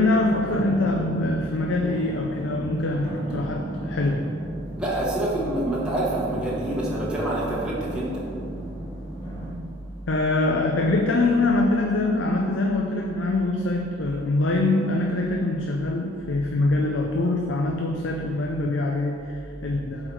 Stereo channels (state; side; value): normal; both; correlation 0.56